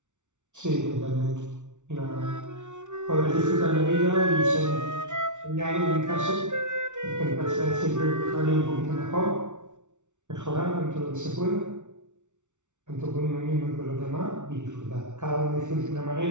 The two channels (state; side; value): late; left; 0.85 ms